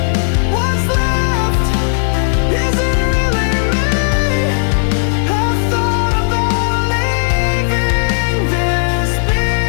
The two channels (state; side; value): silent; right; digital silence